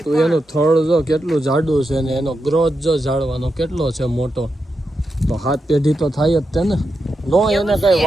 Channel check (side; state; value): both; normal; correlation 0.87